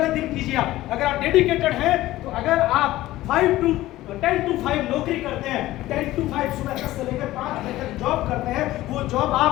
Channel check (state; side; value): quieter; right; 16.2 dB